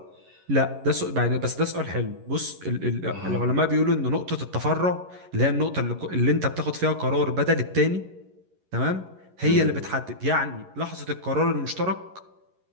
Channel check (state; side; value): late; left; 11 ms